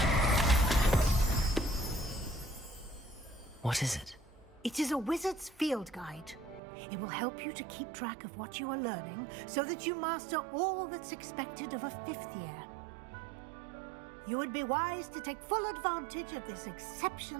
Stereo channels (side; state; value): left; drops out; at 6.6 s